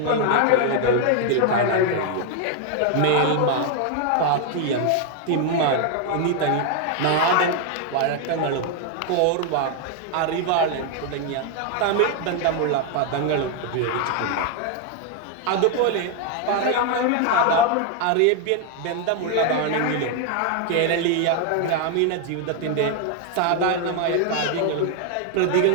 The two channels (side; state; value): both; different; correlation 0.00